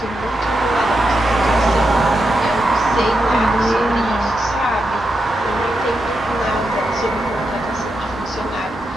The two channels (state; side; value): normal; both; correlation 0.86